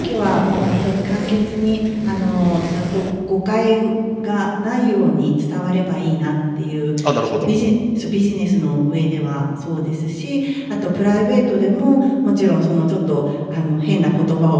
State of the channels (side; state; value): both; identical; correlation 1.00